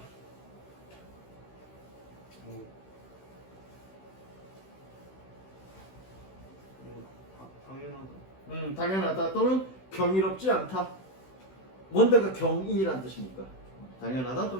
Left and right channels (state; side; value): late; right; 16 ms